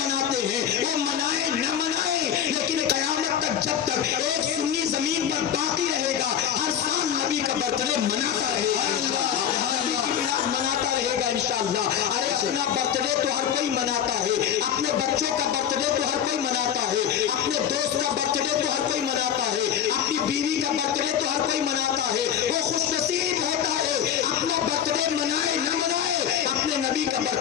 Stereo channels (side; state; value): right; quieter; 9.2 dB